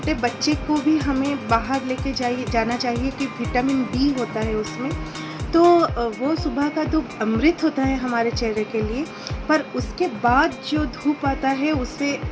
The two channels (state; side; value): identical; both; correlation 1.00